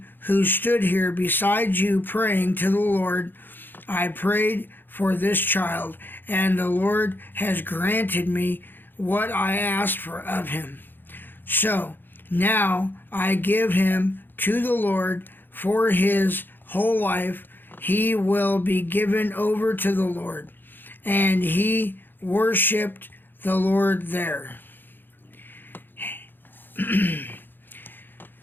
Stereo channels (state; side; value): late; right; 0.095 ms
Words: who stood here beside you praying to the Lord. I prayed for this child, and the Lord has granted me what I asked for of him. So now I give him to the Lord for his whole life. He will be given over to the Lord. And he worshipped the Lord there.